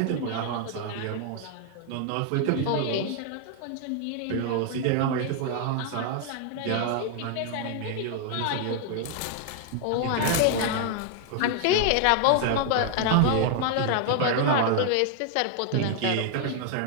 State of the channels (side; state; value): both; different; correlation 0.00